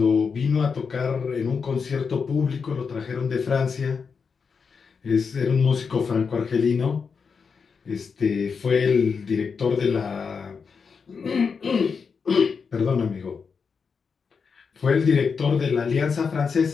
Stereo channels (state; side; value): quieter; right; 5.6 dB